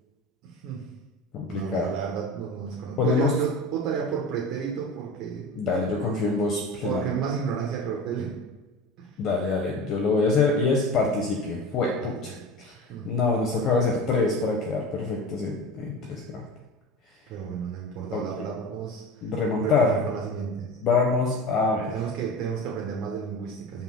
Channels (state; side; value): normal; both; correlation 0.32